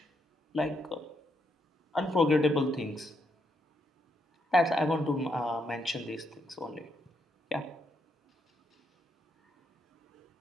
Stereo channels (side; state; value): both; normal; correlation 0.78